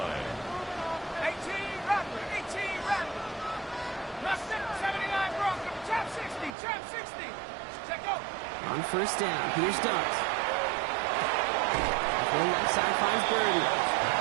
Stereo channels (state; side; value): drops out; left; at 6.6 s